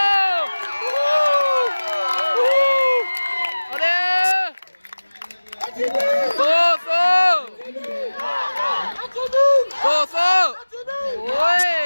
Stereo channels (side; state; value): both; inverted; correlation -1.00